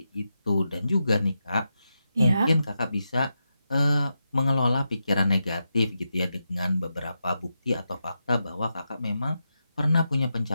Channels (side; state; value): both; inverted; correlation -0.88